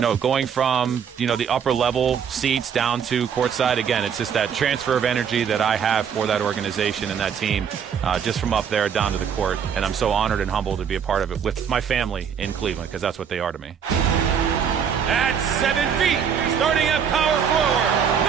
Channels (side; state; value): left; quieter; 7.5 dB